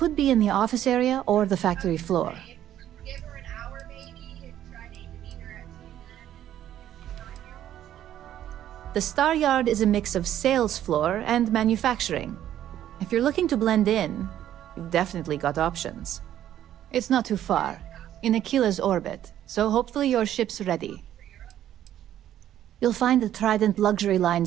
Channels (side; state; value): left; quieter; 11.6 dB